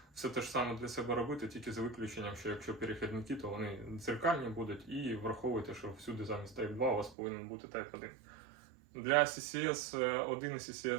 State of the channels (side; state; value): left; drops out; at 7.2 s